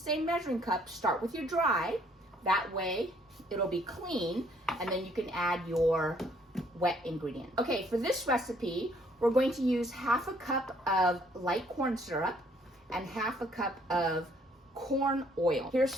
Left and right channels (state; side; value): normal; both; correlation 0.64